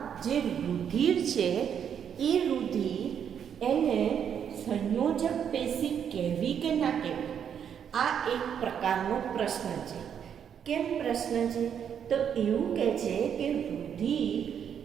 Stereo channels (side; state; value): left; quieter; 8.3 dB